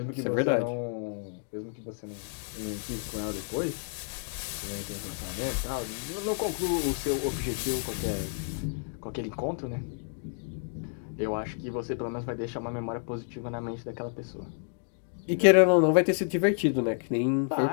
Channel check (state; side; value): silent; right; 56 dB below the other